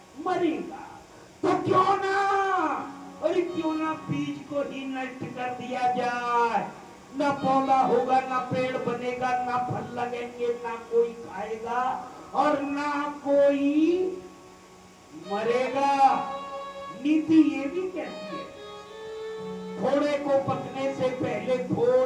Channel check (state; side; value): identical; both; correlation 1.00